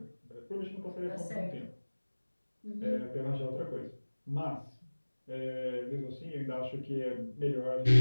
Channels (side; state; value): both; inverted; correlation -1.00